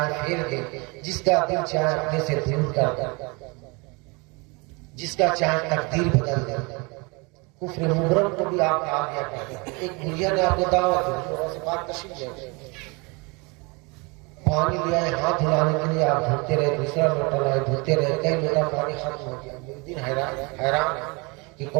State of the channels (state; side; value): quieter; left; 28.5 dB